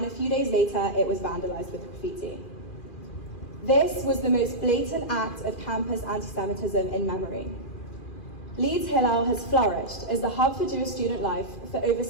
a few days later, it was vandalized with graffiti. This was the most blatant act of campus anti-Semitism in memory. Leeds Hillel has flourished as the hub for Jewish student life for over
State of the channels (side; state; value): right; late; 2.4 ms